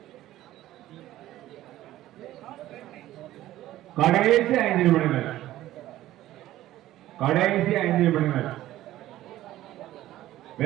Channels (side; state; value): left; quieter; 14.6 dB